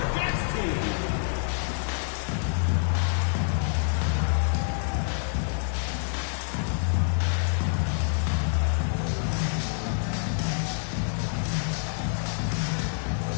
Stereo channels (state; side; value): silent; right; digital silence